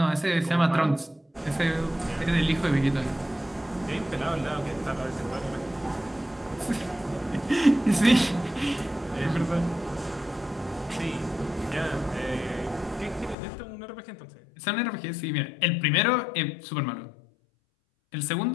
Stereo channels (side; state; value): right; drops out; at 13.4 s